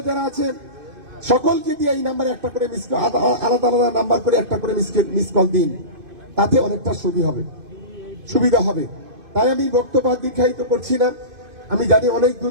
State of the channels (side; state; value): left; late; 2.5 ms